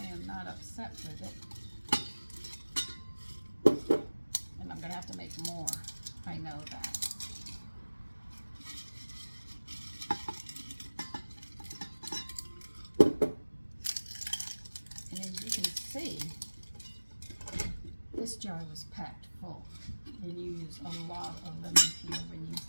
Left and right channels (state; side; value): inverted; both; correlation -1.00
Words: am not upset with it. And I'm going to have to make more. I know that. And as you can see, this jar was packed full. And you use a lot of lemon peel when you